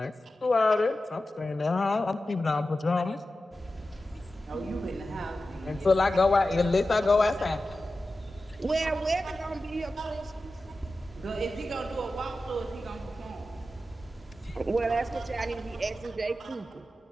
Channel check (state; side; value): normal; both; correlation 0.93